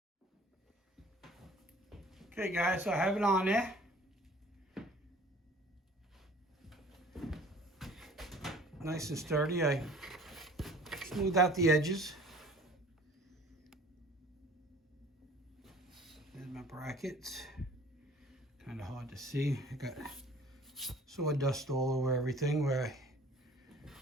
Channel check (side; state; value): both; normal; correlation 0.50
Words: Okay guys, so I have it on there. Nice and sturdy. I smooth out the edges. There's my brackets. Kind of hard to see. I got sawdust all over everything where I